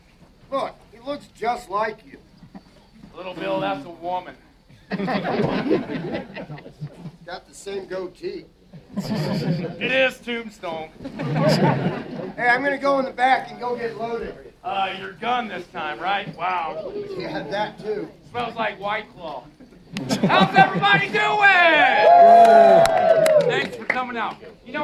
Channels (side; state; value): both; identical; correlation 1.00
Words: Look, he looks just like you. Little Bill, that's a woman. Got the same goatee. It is Tombstone. Hey, I'm gonna go in the back and go get loaded. Your gun this time, right? Wow. Yeah, that too. Smells like White Claw. How's everybody doing? Thanks for coming out. You